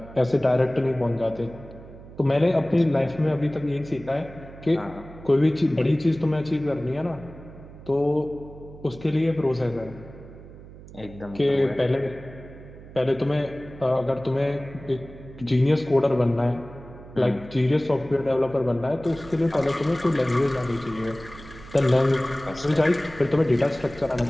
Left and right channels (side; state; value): right; noise; hum, 17 dB below the sound